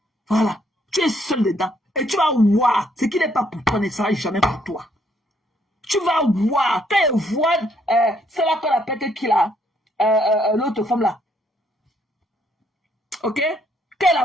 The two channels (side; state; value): both; normal; correlation 0.70